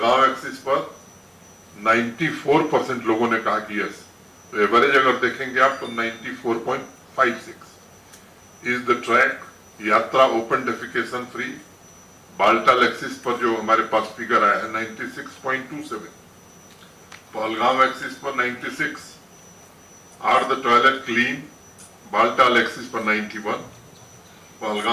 एक्सिस पर 94% लोगों ने कहा कि यस। तो एवरेज अगर देखेंगे आप तो 94.56। इज द ट्रैक यात्रा open defecation free? Baltal axis पर जो हमारे पास फिगर आया है 96.27, पहलगांव एक्सिस पर 96। Are the toilet clean? Baltal axis पर 91,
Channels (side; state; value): both; identical; correlation 1.00